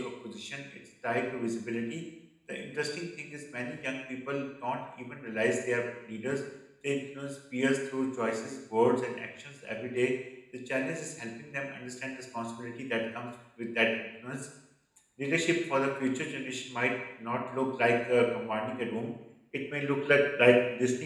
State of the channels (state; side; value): identical; both; correlation 1.00